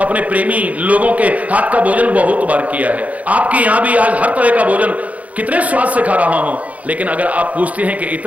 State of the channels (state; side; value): late; left; 0.070 ms